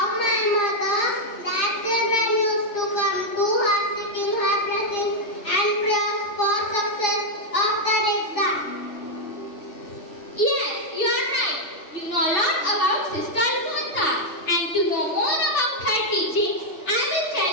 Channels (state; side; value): late; right; 3.4 ms